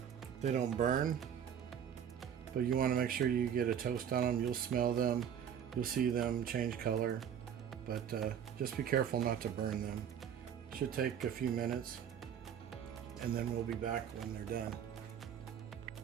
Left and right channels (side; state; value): left; quieter; 8.7 dB